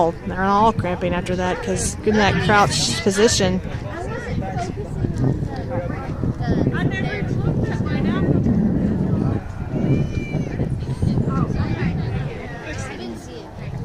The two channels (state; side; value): identical; both; correlation 1.00